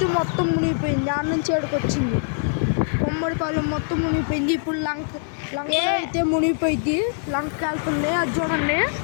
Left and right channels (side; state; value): right; silent; 63 dB below the other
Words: మొత్తం మునిగిపోయింది. ఆడ నుంచి ఏడుకు వచ్చింది. బొమ్మడిపాలెం మొత్తం మునిగిపోయింది. ఇప్పుడు లంకలో అయితే మునిగిపోయింది. లంకకి వెళ్తుంది. అది చూడండి,